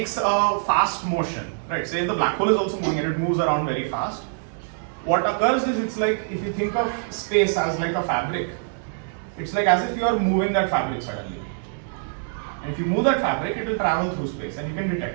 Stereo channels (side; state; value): left; silent; digital silence